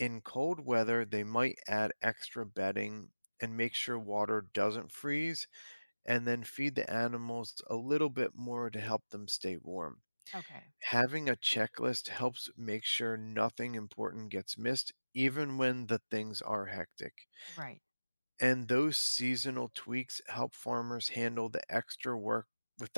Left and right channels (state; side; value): inverted; both; correlation -1.00